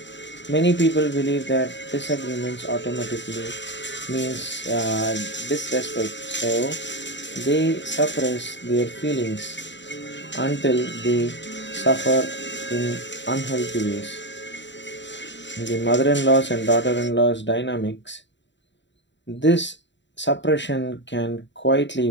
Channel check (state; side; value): late; right; 0.53 ms